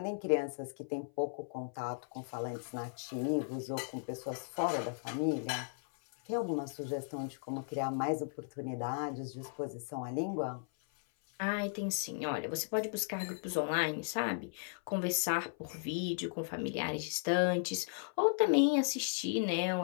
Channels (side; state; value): right; silent; 54 dB below the other